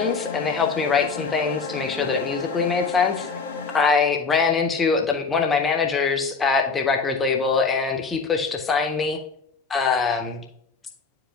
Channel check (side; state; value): right; quieter; 4.7 dB